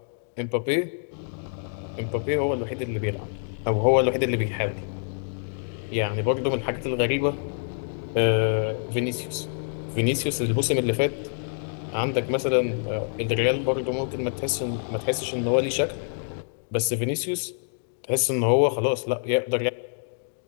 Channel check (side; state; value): right; silent; digital silence